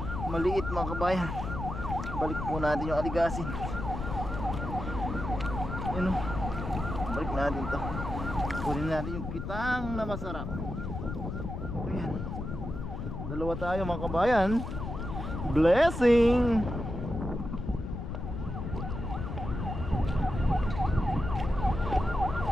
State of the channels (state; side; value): noise; left; rumble, 5 dB below the sound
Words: Maliit mga kabayan. Balik po natin yung aligasin. Yun balik natin to. Kunin natin yung kitang na masarap. Ayan, dalawa tayo mga kabayan. Blessing.